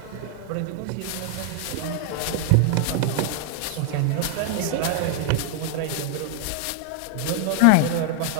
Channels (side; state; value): both; different; correlation 0.00